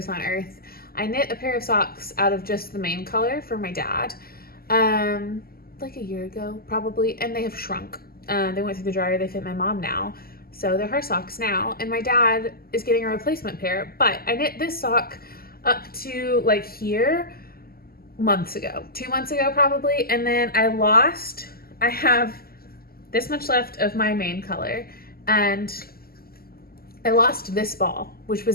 on earth. I knit a pair of socks out of just the main color for my dad like a year ago probably, and they have shrunk. They went through the dryer, they fit my mom now. So they're her socks now, and my dad is getting a replacement pair, but I knit this sock up to like here months ago, 2 months ago probably, and then I have this much left of my main color, and I lost this ball, which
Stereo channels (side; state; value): right; late; 0.44 ms